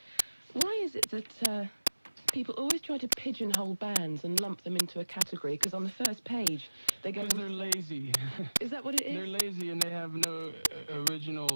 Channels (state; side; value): inverted; both; correlation -1.00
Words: Why is it that people always try to pigeonhole bands and lump them into a category? Because on the first page, they go... Because they're lazy. Is that what it is? They're lazy and they have no